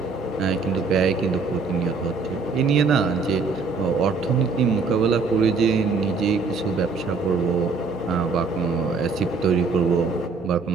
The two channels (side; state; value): left; quieter; 4.6 dB